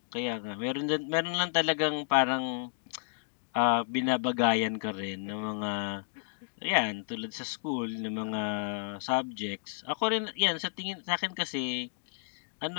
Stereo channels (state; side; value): silent; right; digital silence